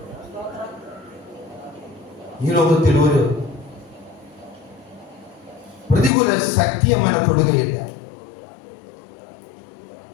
സ്തോത്രം. ഈ ലോകത്തിൽ ഒരു പ്രതികൂല ശക്തി അവനെ തൊടുകയില്ല.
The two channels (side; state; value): right; drops out; at 6.1 s